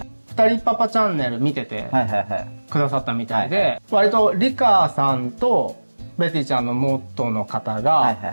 二人パパチャンネル見ててくださったみたいで、割とリカさんとベティちゃんの元の方が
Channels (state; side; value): inverted; both; correlation -1.00